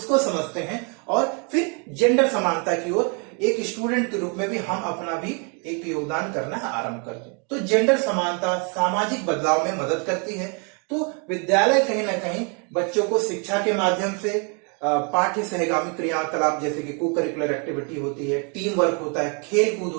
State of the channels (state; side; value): quieter; left; 36.3 dB